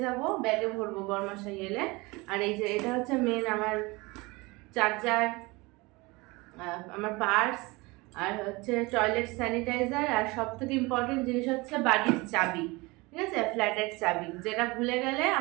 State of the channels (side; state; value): left; quieter; 24.1 dB